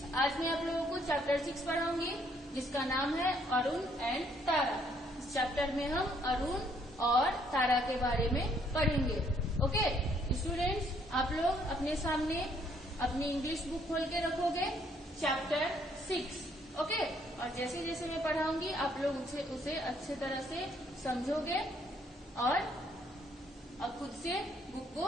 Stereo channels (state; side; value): normal; both; correlation 0.67